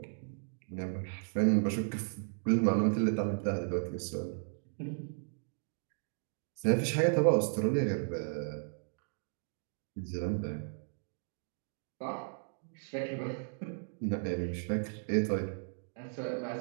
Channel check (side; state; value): left; silent; digital silence